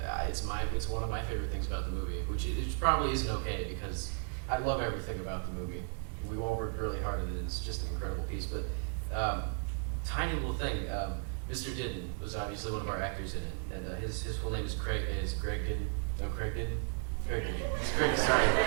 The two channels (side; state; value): left; silent; 55 dB below the other